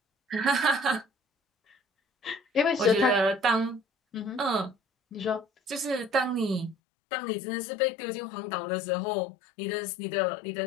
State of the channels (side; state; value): right; drops out; at 6.8 s